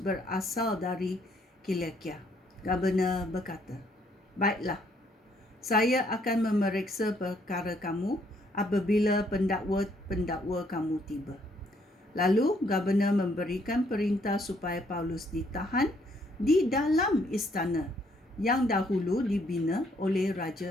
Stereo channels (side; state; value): both; normal; correlation 0.68